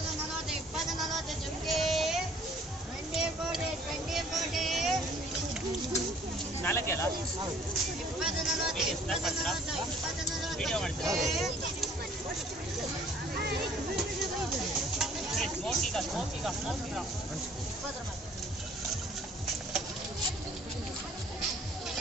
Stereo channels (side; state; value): both; normal; correlation 0.56